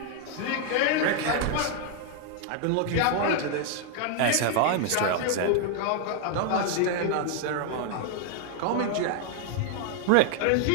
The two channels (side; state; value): both; different; correlation 0.00